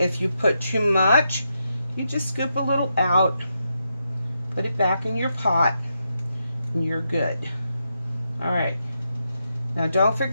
you put too much, you just scoop a little out, put it back in your pot, and you're good. All right. Now don't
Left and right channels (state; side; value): inverted; both; correlation -0.84